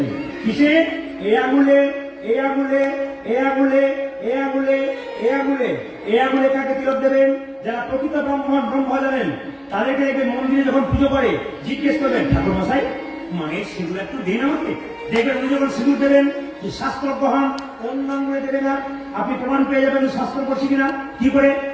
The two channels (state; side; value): identical; both; correlation 1.00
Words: কিসে? এই আঙুলে, এই আঙুলে, এই আঙুলে, এই আঙুলে, এই আঙুলে। এই আঙুলে কাকে তিলক দেবেন? যারা প্রকৃত ব্রহ্ম জানেন, তাদেরকে দেখবেন মন্দিরে যখন পুজো করে জিজ্ঞেস করবেন, ঠাকুর মশাই মায়ের সিঁদুর একটু দিন আমাকে। দেখবেন উনি যখন সিঁদুর দেবেন, যে শাস্ত্র গ্রহণ অন্য আঙুলে দেবে না, আপনি প্রমাণ পেয়ে যাবেন শাস্ত্র করছি কিনা। কি করে?